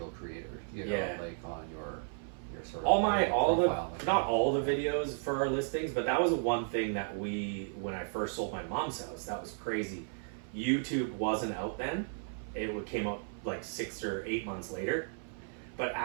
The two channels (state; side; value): silent; left; 55 dB below the other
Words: creator. You know, Yeah. like on your sort of all profile, not all the videos for our listings, but that was one thing that when I first sold my mom's house, that was crazy. YouTube wasn't out then. It came out like 6 or 8 months later. But